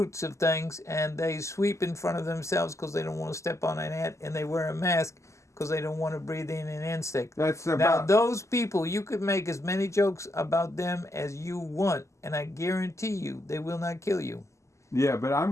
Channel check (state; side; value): late; right; 0.14 ms